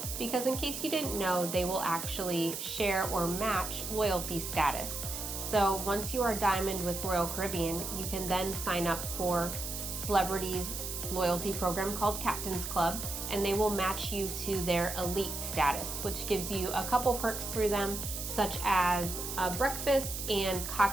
because in case you didn't know, they will actually share or match loyalty status. So once you are diamond with Royal Caribbean, you can then sign up for Celebrity's loyalty program called Captain's Club, and they will match you to their elite status, which gives you a couple perks through them, such as breakfast and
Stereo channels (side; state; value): right; noise; hiss, 6 dB below the sound